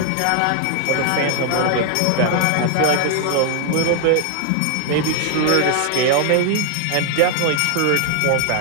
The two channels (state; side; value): different; both; correlation 0.00